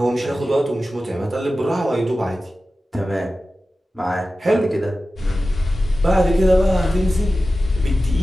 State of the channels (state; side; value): normal; both; correlation 0.94